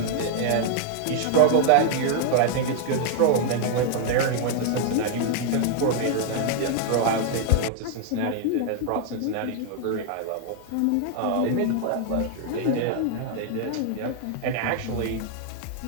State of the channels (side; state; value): both; different; correlation 0.00